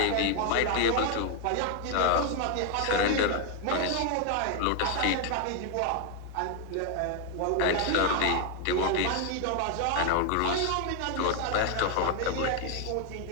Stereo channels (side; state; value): both; different; correlation 0.01